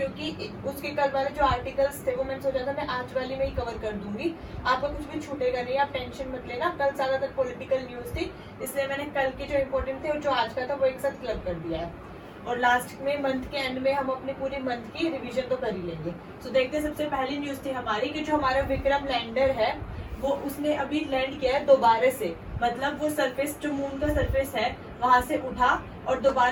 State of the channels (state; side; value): identical; both; correlation 1.00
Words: उसके कल वाले जो आर्टिकल्स थे वो मैंने सोचा था मैं आज वाली में ही कवर कर दूंगी। आपका कुछ भी छूटेगा नहीं, आप टेंशन मत लेना। कल ज्यादातर पॉलिटिकल न्यूज थी, इसलिए मैंने कल के जो इम्पोर्टेंट थे और जो आज का था वो एक साथ क्लब कर दिया है। और लास्ट में मंथ के एंड में हम अपने पूरे मंथ की रिवीजन तो कर ही लेंगे। सो देखते हैं, सबसे पहली न्यूज थी हमारी कि जो हमारा विक्रम लैंडर है वो उसने अभी लैंड किया है दोबारा से। मतलब वो सरफेस, जो मून का सरफेस है वहां से उठा और